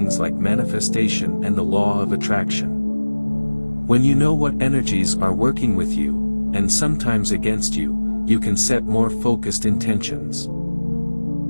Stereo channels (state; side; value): inverted; both; correlation -1.00